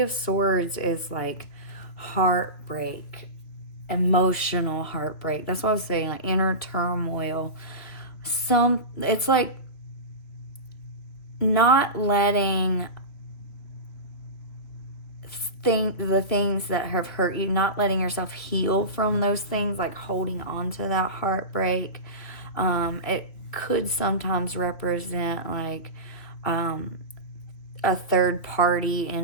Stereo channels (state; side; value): late; right; 3.0 ms